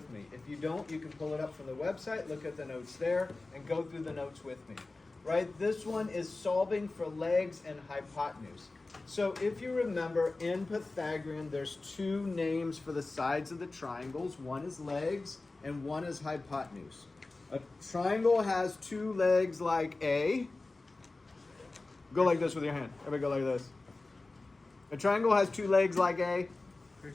me. If you don't, you can pull it up from the website, look at the notes there, and go through the notes with me. Right, this one is solving for legs and hypotenuse. So if you remember, in Pythagorean, there's 2 names for the sides of the triangles. One is legs and one is hypotenuse. A triangle has 2 legs like A. Go like this with your hand. Everybody go like this. A triangle has 2 legs like a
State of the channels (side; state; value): right; quieter; 3.3 dB